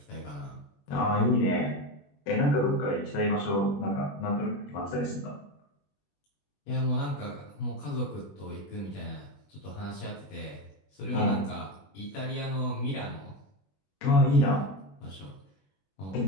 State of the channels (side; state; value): right; late; 21 ms